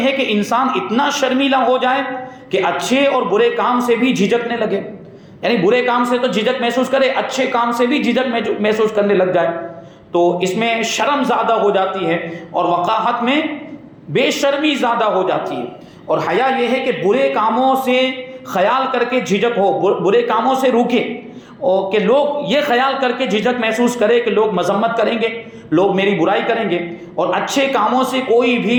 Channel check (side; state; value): both; identical; correlation 1.00